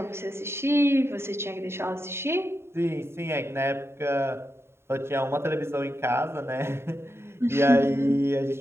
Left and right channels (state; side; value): late; left; 0.12 ms